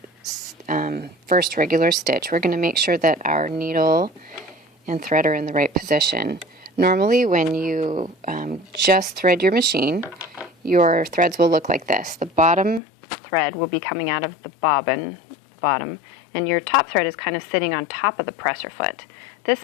first regular stitch, we're going to make sure that our needle and thread are in the right position. Normally when you just thread your machine, your threads will look like this. The bottom thread will be coming out of the bobbin, bottom, and your top thread is kind of sitting on top of the presser foot.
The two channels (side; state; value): right; drops out; at 12.8 s